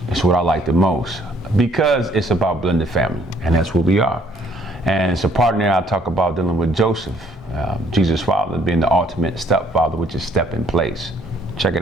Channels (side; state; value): both; normal; correlation 0.63